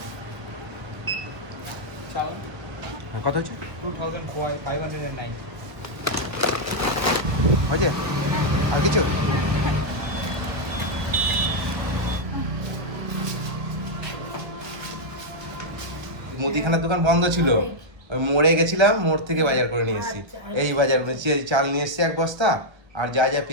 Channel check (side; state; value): left; late; 1.2 ms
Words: চাল হ্যাঁ কত হচ্ছে? 2509 হয়েছে? আর কিছু? মুদিখানার দোকান বন্ধ ছিল, ওই মোড়ে গেছিলাম, মোড় থেকে বাজার করে নিয়ে এসেছি। আচ্ছা। এই বাজার চাল নিয়ে এসেছি এক বস্তা, আর যা যা